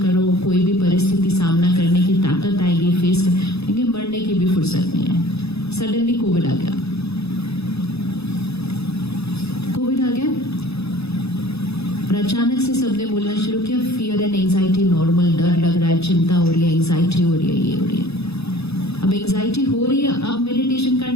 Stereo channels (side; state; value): right; late; 0.79 ms